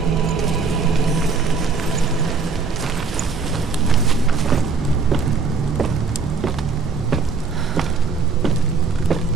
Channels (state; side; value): quieter; left; 4.8 dB